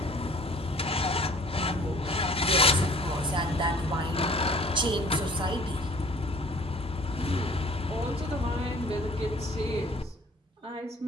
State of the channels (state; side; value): normal; both; correlation 0.52